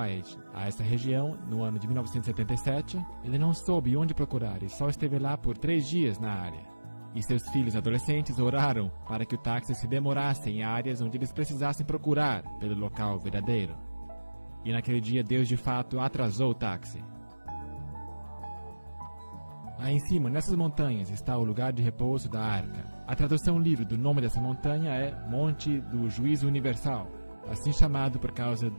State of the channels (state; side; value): inverted; both; correlation -1.00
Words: a essa região, no ano de 1977, ele não soube onde procurar e só esteve lá por 3 dias na área. E seus filhos adolescentes oraram para que o táxi se demorasse em áreas onde eles precisassem procurar pelo local verdadeiro. E naquele dia Deus de fato atrasou o táxi. Aí em cima, nessas montanhas, está o lugar de repouso da arca. A tradução livre do nome dessa montanha é Monte do Juízo Universal, assim chamado por causa